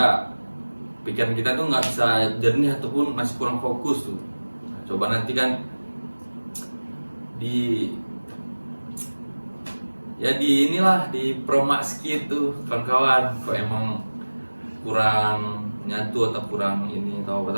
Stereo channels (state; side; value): inverted; both; correlation -1.00